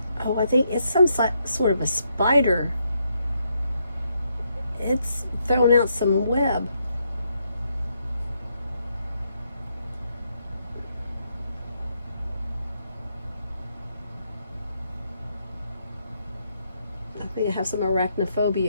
Oh, I think it's some sort of a spider. It's throwing out some web. I think I have some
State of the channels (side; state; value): both; inverted; correlation -0.78